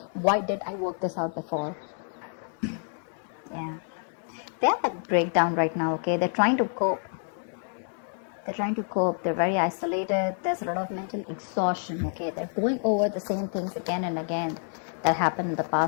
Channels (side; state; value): right; silent; 58 dB below the other